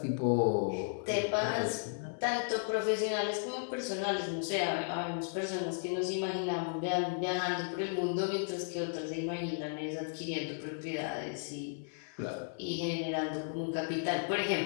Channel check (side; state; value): right; silent; 55 dB below the other